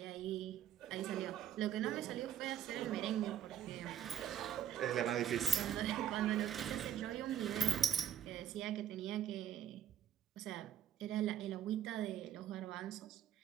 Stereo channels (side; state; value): left; quieter; 10.1 dB